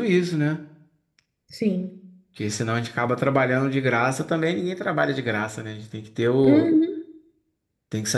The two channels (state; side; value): identical; both; correlation 1.00